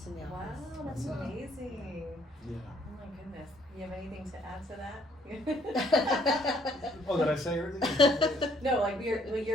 in the Wow, office. that's amazing. Yeah. Oh my goodness. You have anything to add to that? Oh, did I say everything? No, like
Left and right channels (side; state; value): both; normal; correlation 0.65